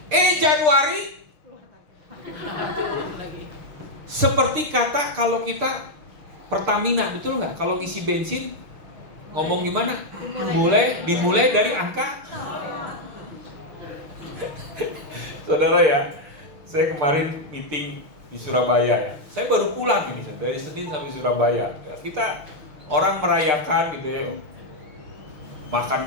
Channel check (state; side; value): late; left; 6.7 ms